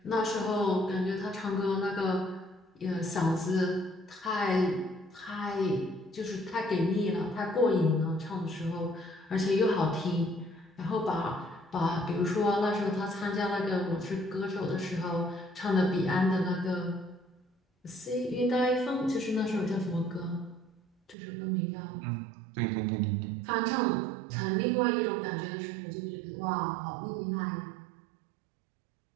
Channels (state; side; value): drops out; left; at 21.2 s